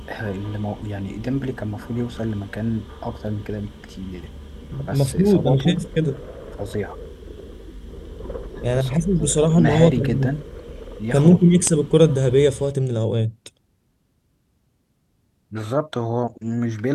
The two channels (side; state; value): both; identical; correlation 1.00